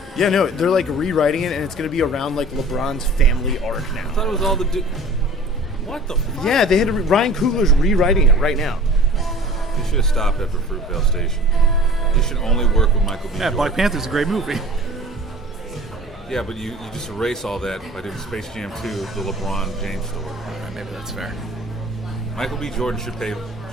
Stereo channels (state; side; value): normal; both; correlation 0.45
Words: Yeah, no, they're like rewriting it, and it's going to be around like LeBron's family arc I now. thought it was all the What the fuck? Yeah, they had to Ryan Coogler's rewriting it right now. You should have stopped after Fruitvale Station. You should only work with Michael B. Yeah, Jordan. Black Panther's a great movie. Yeah, but you just erase all that by doing Space Jam 2, the LeBron James story. Maybe that's fair. Michael B. Jordan should play